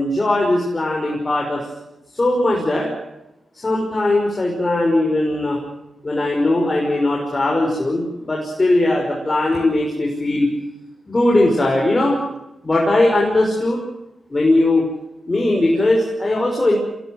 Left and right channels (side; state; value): both; normal; correlation 0.93